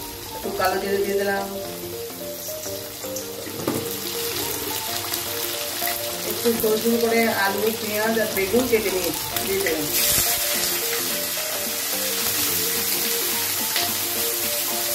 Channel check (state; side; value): identical; both; correlation 1.00